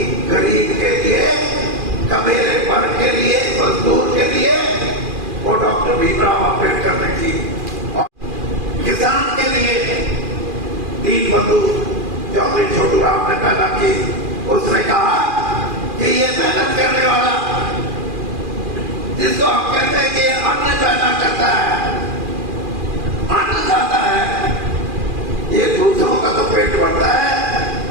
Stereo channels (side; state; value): left; late; 2.4 ms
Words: गरीब के लिए, कबीले वर्ग के लिए, मजदूर के लिए, वो डॉक्टर भीमराव अम्बेडकर ने की। और किसान के लिए दीन बंधु चौधरी छोटू राम ने पैदा की। उसने कहा कि ये मेहनत करने वाला, जिसको हम कहते हैं कि अन्न पैदा करता है, अन्न खाता है, ये दूसरों का तो पेट भरता है,